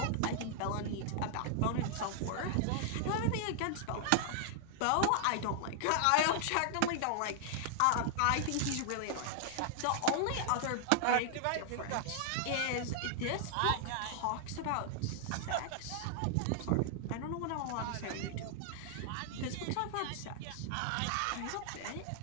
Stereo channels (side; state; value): both; different; correlation -0.01